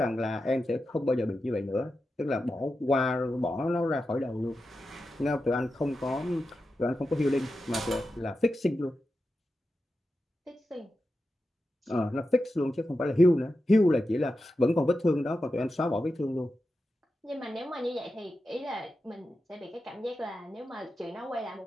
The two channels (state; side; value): normal; both; correlation 0.90